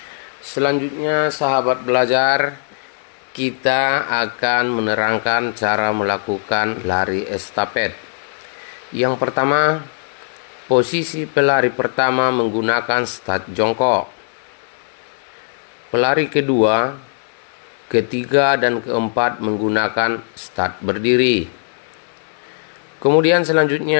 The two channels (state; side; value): silent; right; digital silence